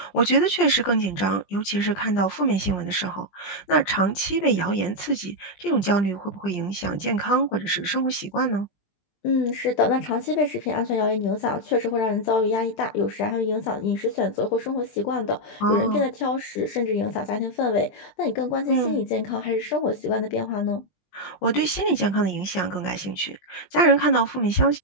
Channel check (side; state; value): right; late; 20 ms